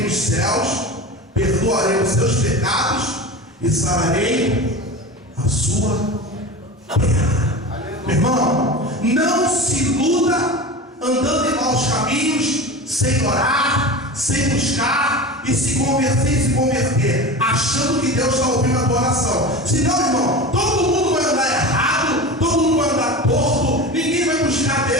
nos céus, perdoarei os seus pecados e sararei a sua terra. Meu irmão, não se iluda andando em maus caminhos, sem orar, sem buscar e se converter, achando que Deus está ouvindo a tua oração. Senão, irmão, todo mundo vai andar errado, todo mundo vai andar torto, ninguém vai buscar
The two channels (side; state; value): both; normal; correlation 0.30